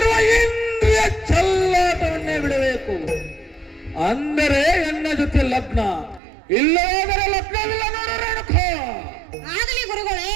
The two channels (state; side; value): drops out; left; at 6.2 s